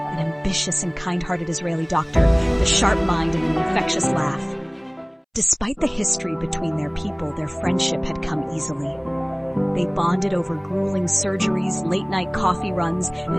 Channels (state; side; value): identical; both; correlation 1.00